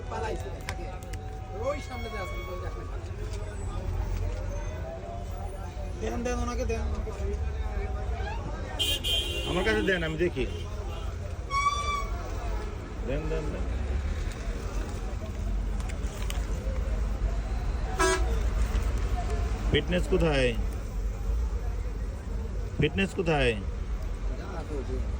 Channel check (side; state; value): both; identical; correlation 1.00